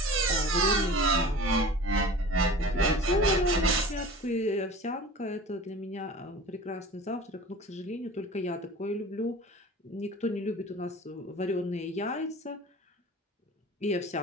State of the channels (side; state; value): both; normal; correlation 0.40